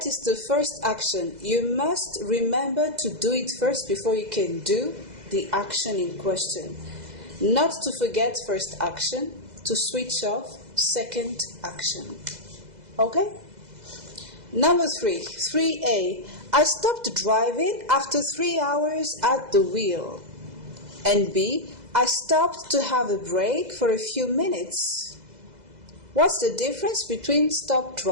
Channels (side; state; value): left; late; 2.0 ms